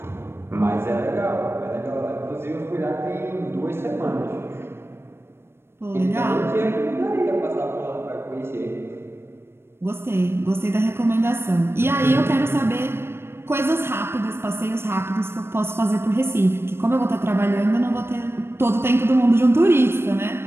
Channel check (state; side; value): late; left; 0.12 ms